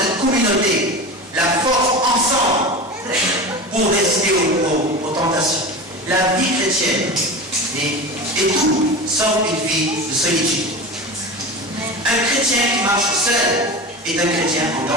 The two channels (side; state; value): both; normal; correlation 0.29